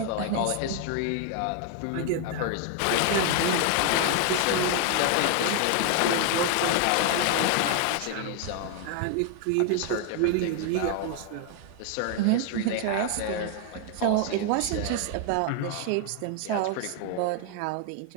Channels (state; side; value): different; both; correlation 0.00